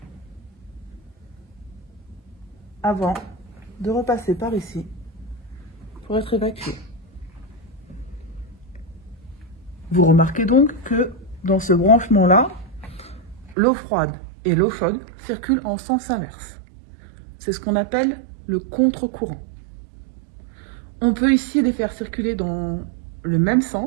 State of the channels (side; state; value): left; drops out; at 13.6 s